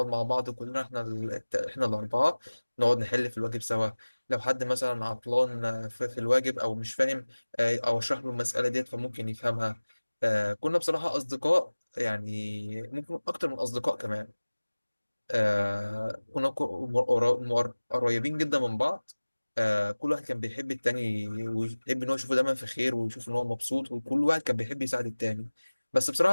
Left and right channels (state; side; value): inverted; both; correlation -1.00